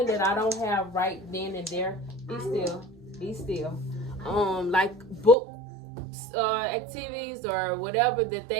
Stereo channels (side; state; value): left; drops out; at 5.4 s